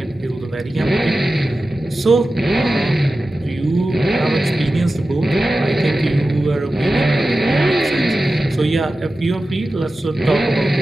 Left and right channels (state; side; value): normal; both; correlation 0.94